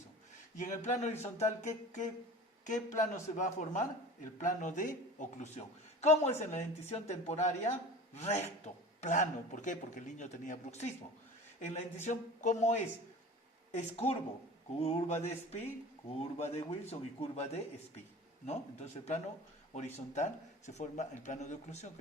Y en el plano horizontal, ¿qué plano se va a formar? El plano de oclusión. ¿Cómo es en la dentición temporaria? Recto, plano. ¿Por qué? Porque el niño tenía bruxismo. En la dentición, ¿cómo es? Es curvo. Curva de Spee, curva de Wilson y curva de Spee, ¿no? Entonces el plano horizontal se forma el plano de oclusión,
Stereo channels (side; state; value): both; normal; correlation 0.38